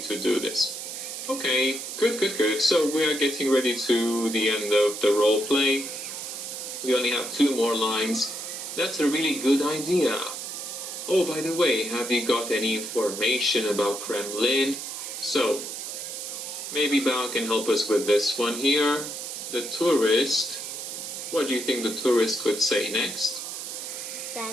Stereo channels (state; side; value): noise; right; hiss, 7 dB below the sound